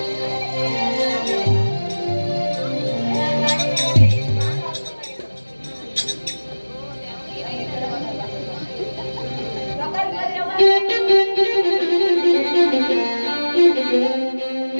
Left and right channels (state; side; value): inverted; both; correlation -1.00